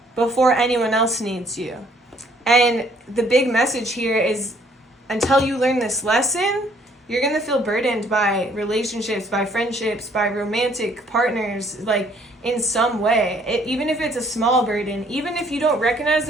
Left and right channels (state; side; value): normal; both; correlation 0.63